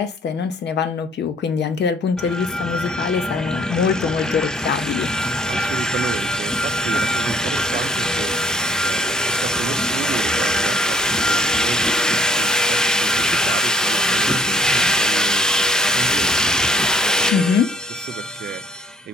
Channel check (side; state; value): both; normal; correlation 0.59